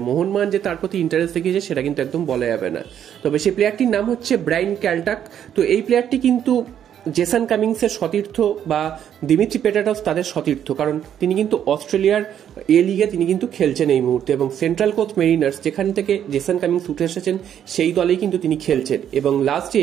মোহনবাগান যে তার প্রতি ইন্টারেস্ট দেখিয়েছে সেটা কিন্তু একদম বলা যাবে না। তবে সেই প্লেয়ারটির নাম হচ্ছে ব্রায়ান ক্যালটাক। তো এই প্লেয়ারটি কিন্তু জেসন কামিংসের সতীর্থ বা দিমিত্রি পেটাটস তাদের সতীর্থ, কারণ তিনি কিন্তু অস্ট্রেলিয়ার এ লিগে তিনি কিন্তু খেলছেন এই মুহূর্তে, এবং সেন্ট্রাল কোস্ট মেরিনার্স যেখান থেকে জেসন কামিংস উঠে এসেছেন সেই দলেই কিন্তু তিনি খেলছেন। এবং লাস্ট যে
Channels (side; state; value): left; quieter; 9.6 dB